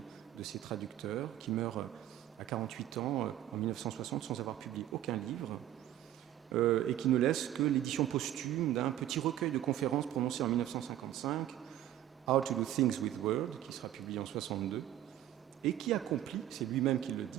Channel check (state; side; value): quieter; left; 12.5 dB